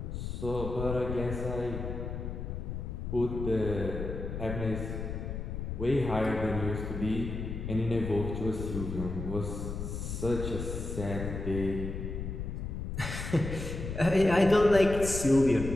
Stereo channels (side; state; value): left; noise; rumble, 5 dB below the sound